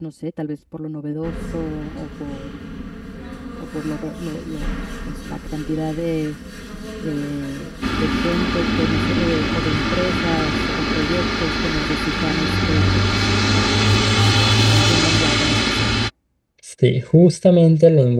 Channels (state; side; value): identical; both; correlation 1.00